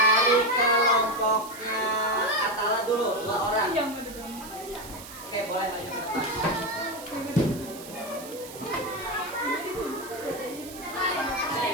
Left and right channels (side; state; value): right; noise; hiss, 15 dB below the sound